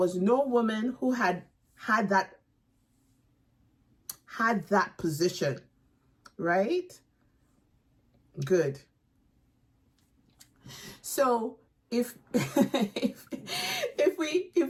no woman who had that position, right? Good. So if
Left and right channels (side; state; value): both; identical; correlation 1.00